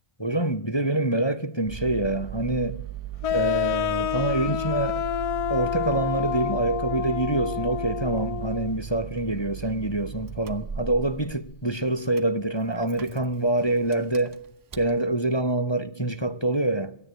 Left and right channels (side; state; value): right; late; 1.2 ms